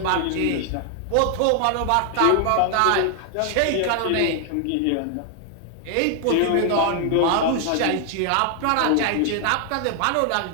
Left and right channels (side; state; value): both; different; correlation 0.00